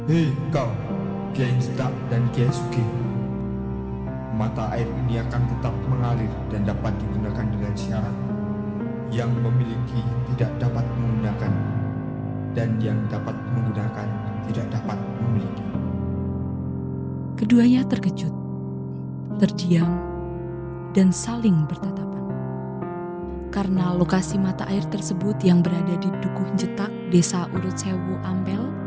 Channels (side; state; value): both; identical; correlation 1.00